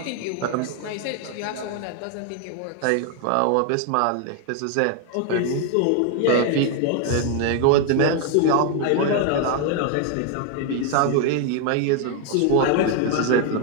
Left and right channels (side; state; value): both; different; correlation 0.00